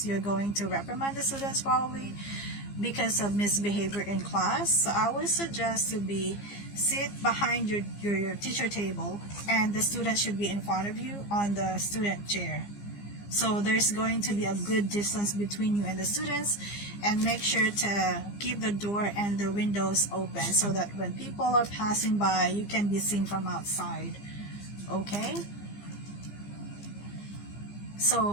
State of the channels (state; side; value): late; right; 15 ms